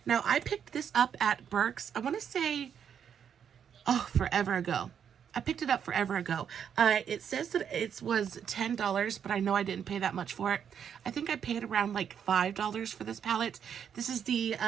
Now, I picked this up at Burke's, I want to say, forever ago. I picked it up forever ago. It says that it was $10, but I know I didn't pay that much for it. I think I paid around like $5 for this palette. This is the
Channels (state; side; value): quieter; left; 8.1 dB